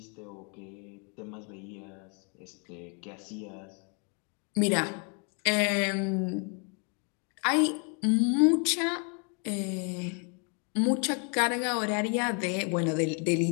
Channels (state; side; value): quieter; right; 36.6 dB